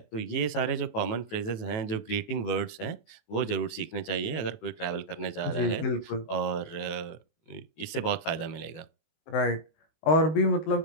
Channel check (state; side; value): late; right; 18 ms